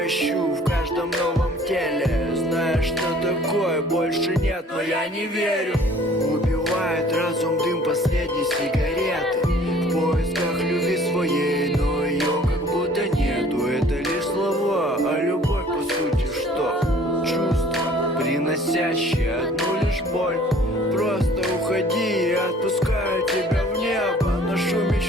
ищу в каждом новом теле. Знаешь, что такое больше нет, но я не верю. Убивает разум дым последней сигареты. В поисках любви своей, но ее как будто нету. Это лишь слова, а любовь по сути что? Чувство, приносящее одну лишь боль. Просто уходи, я отпускаю тебя в небо. Ношу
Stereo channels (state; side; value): normal; both; correlation 0.53